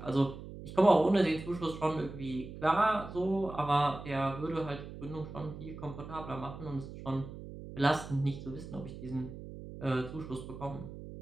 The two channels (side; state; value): right; noise; hum, 12 dB below the sound